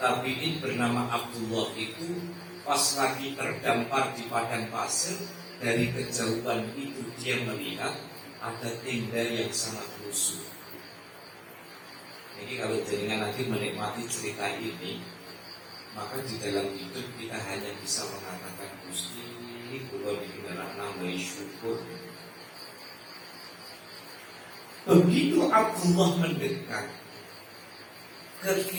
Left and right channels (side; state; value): both; identical; correlation 1.00